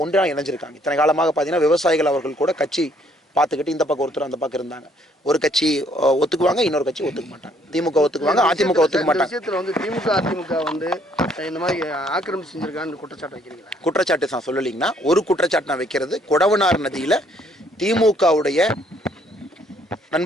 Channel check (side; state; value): both; normal; correlation 0.65